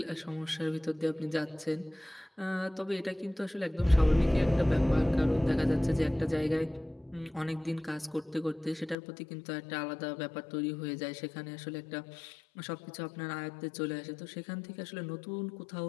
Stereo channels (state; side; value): drops out; right; at 9.0 s